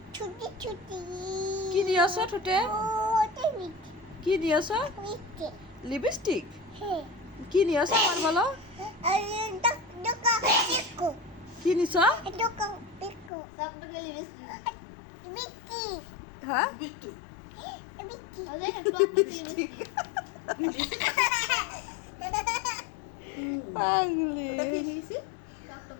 ছুটি ছুটি কি নিয়েছো ঠোঁটে ওটা মিঠে কি নিয়েছো মিঠে লিপস্টিক হ্যাঁ কি নিয়েছো আমার বলো আরে দোকা পিকো কি নিছো দোকা পিকো সবটাকে লিপস্টিক মিঠে হ্যাঁ মিঠে ওদের টপ লিপস্টিক পাগলি মিঠে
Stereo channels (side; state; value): right; drops out; at 13.3 s